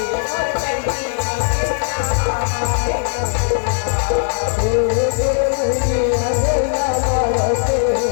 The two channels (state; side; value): silent; right; digital silence